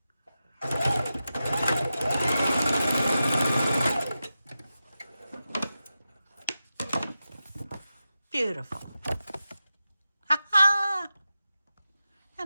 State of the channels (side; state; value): both; inverted; correlation -0.92